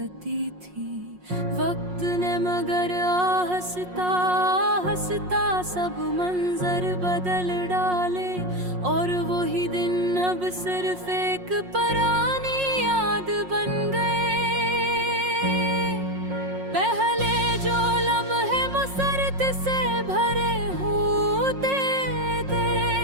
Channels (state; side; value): late; left; 5.5 ms